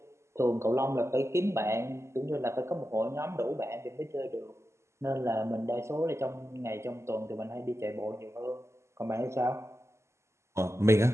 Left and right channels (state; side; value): late; left; 0.13 ms